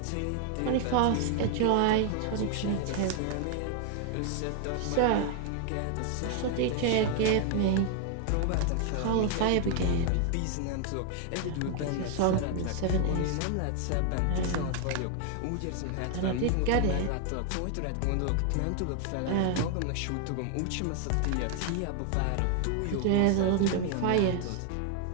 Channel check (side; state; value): both; different; correlation 0.00